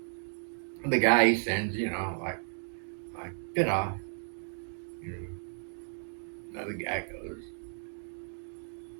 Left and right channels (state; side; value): silent; left; digital silence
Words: the guy he sends, like, da-da. Another guy goes,